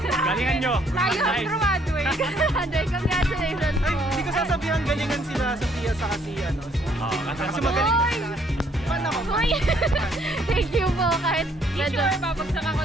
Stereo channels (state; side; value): normal; both; correlation 0.66